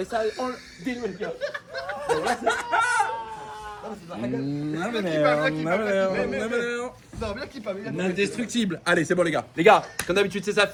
ça a dénoué les cœurs. Indestructible. Allez, c'est bon, les gars. Les gars, comme d'habitude, c'est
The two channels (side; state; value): both; identical; correlation 1.00